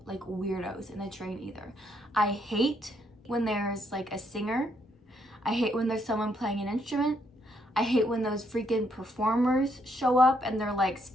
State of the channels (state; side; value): normal; both; correlation 0.73